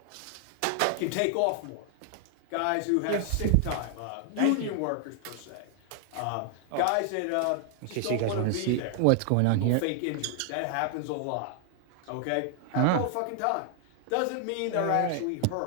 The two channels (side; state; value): both; different; correlation 0.00